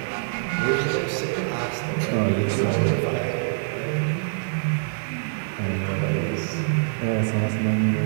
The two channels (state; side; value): silent; left; 62 dB below the other